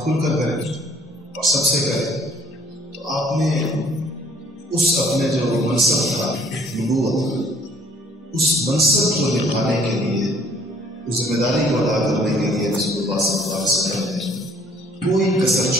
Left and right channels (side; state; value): both; normal; correlation 0.58